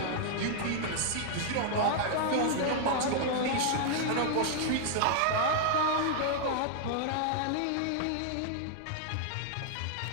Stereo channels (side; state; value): both; different; correlation 0.00